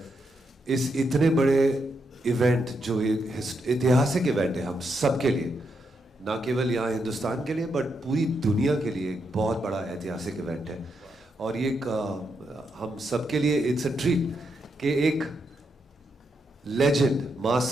इस इतने बड़े इवेंट जो एक ऐतिहासिक इवेंट है हम सब के लिए, ना केवल यहाँ हिंदुस्तान के लिए बट पूरी दुनिया के लिए एक बहुत बड़ा ऐतिहासिक इवेंट है। और ये हम सब के लिए इट्स अ ट्रीट कि एक लेजेंड माँ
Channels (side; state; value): both; normal; correlation 0.81